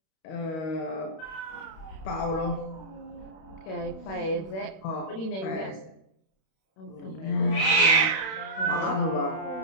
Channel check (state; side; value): late; right; 31 ms